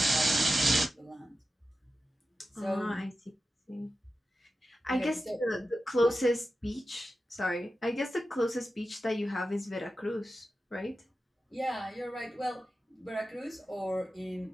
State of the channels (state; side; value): normal; both; correlation 0.93